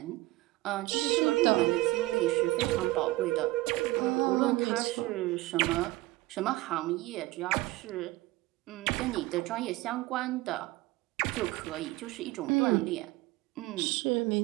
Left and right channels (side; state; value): left; quieter; 19.2 dB